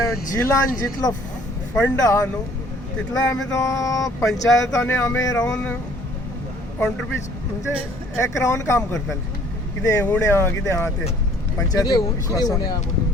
जिल्लान जितलो फंड आहा न्हू तितलो आमी तो पंचायतांनी आमी रावन कॉन्ट्रिब्यूट म्हणजे एक रावन काम करताले. कितें उणें आहा कितें आहा तें पंचायत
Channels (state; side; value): normal; both; correlation 0.57